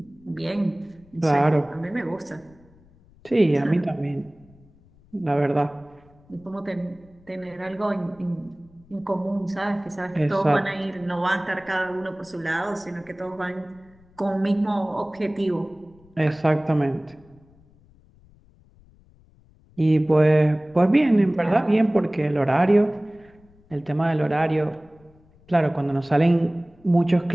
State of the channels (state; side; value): noise; left; rumble, 28 dB below the sound